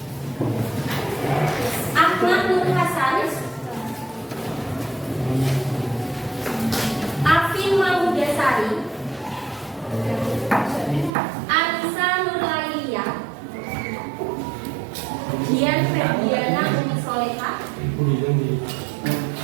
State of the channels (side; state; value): left; drops out; at 11.1 s